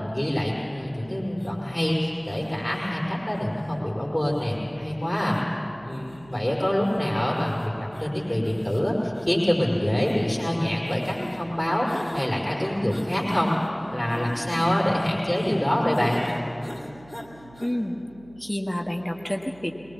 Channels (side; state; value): right; noise; hum, 24 dB below the sound